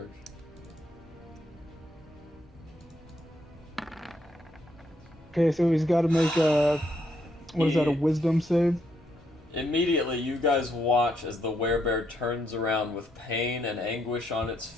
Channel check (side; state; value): both; normal; correlation 0.75